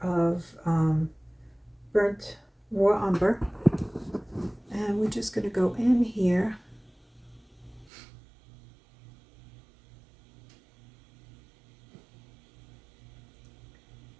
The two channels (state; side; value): drops out; left; at 7.9 s